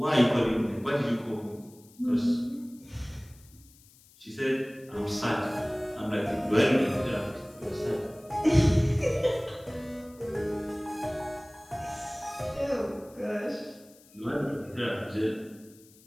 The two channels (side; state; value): left; noise; hiss, 26 dB below the sound